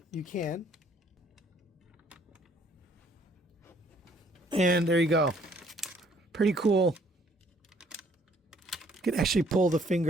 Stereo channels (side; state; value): both; normal; correlation 0.62